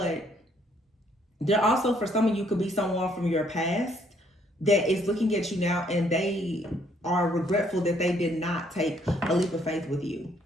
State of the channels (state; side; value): normal; both; correlation 0.67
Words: there also, for some of you, could be someone from your past that is looking at you now and they are regretful that they did not take a leap of faith with you.